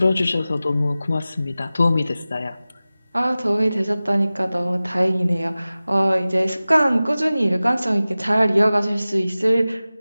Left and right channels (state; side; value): inverted; both; correlation -0.97